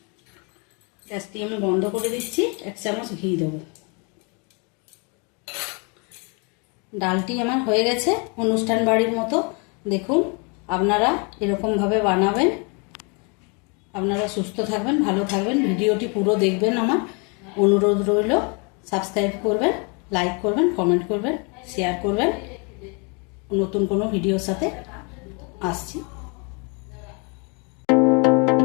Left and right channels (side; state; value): right; quieter; 33.7 dB